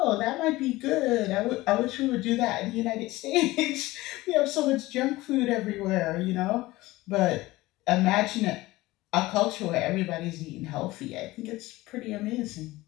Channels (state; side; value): quieter; right; 18.9 dB